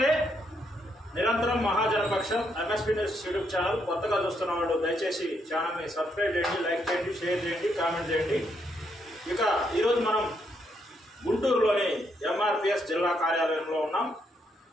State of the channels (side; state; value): both; normal; correlation 0.76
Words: నిరంతరం మహాజనపక్షం MSP news YouTube channel కొత్తగా చూస్తున్న వాళ్ళు దయచేసి ఛానల్ని సబ్స్క్రైబ్ చేయండి, లైక్ చేయండి, షేర్ చేయండి, కామెంట్ చేయండి. ఇక ఈరోజు మనం గుంటూరులోని ఎంఆర్పిఎస్ జిల్లా కార్యాలయంలో ఉన్నాం.